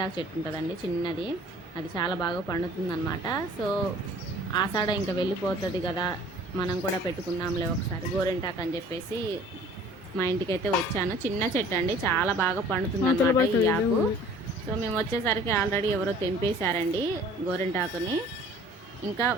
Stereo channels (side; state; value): both; normal; correlation 0.50